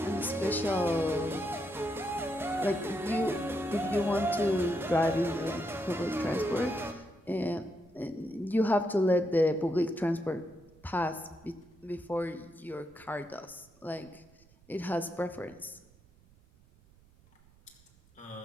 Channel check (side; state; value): right; noise; rumble, 28 dB below the sound